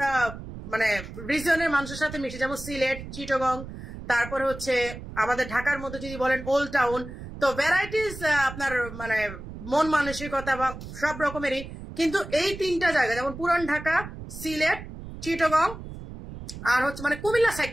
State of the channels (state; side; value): noise; right; rumble, 12 dB below the sound